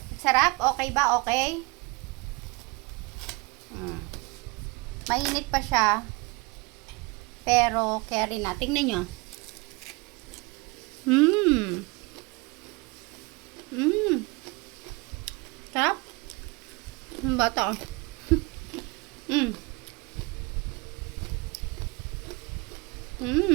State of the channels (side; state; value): left; quieter; 26.5 dB